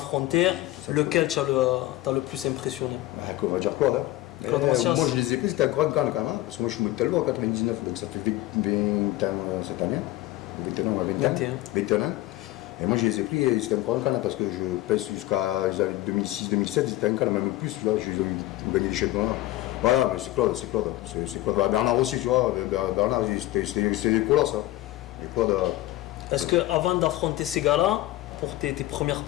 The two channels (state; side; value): quieter; right; 16.6 dB